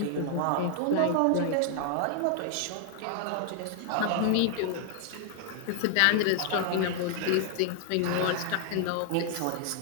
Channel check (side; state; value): both; different; correlation 0.00